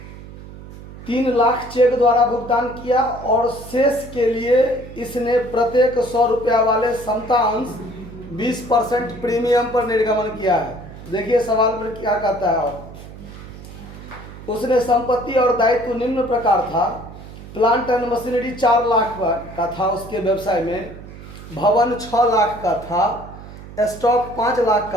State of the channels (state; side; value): noise; right; hum, 15 dB below the sound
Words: 3 लाख चेक द्वारा भुगतान किया और शेष के लिए इसने प्रत्येक 100 रुपया वाले समता अंश 20% प्रीमियम पर निर्गमन किया है। देखिए सवाल पर क्या कहता है। और उसने संपत्ति और दायित्व निम्न प्रकार था। प्लांट एंड मशीनरी 4 लाख का था उसके व्यवसाय में, भवन 6 लाख का था, स्टॉक 5 लाख